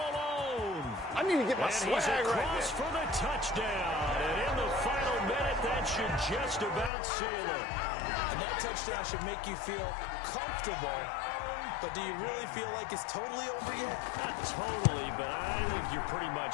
I need to get my swag right there. And he's across for the touchdown. And in the final minute, that should just about seal it. And that touchdown should make you feel comfortable. But do you really feel like it's totally over yet? Not totally, but I think you're pretty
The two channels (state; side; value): drops out; right; at 6.9 s